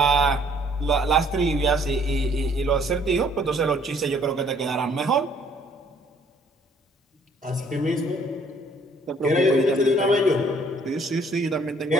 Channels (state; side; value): normal; both; correlation 0.61